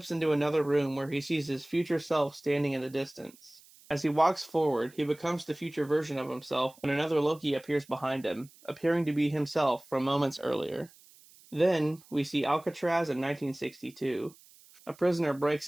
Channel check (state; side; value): noise; right; hiss, 25 dB below the sound